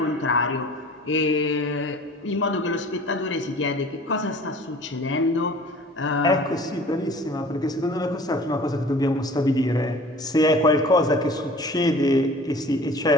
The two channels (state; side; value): normal; both; correlation 0.45